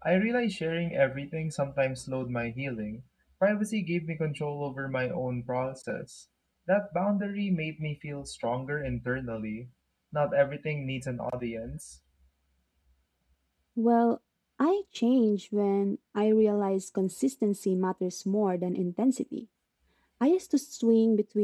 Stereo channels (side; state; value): both; identical; correlation 1.00